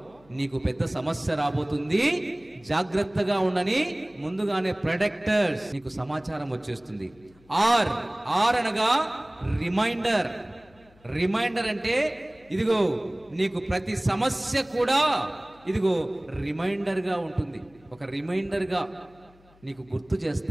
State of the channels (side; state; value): left; noise; hum, 28 dB below the sound